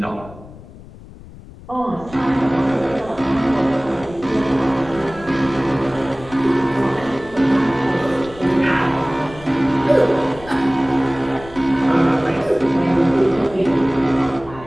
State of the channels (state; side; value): noise; left; rumble, 18 dB below the sound